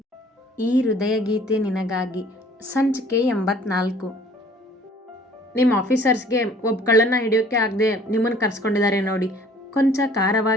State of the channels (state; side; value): normal; both; correlation 0.54